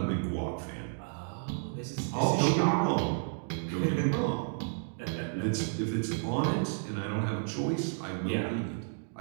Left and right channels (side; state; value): left; silent; digital silence